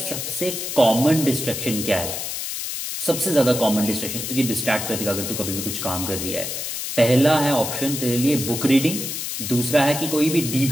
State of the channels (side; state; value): left; noise; hiss, 5 dB below the sound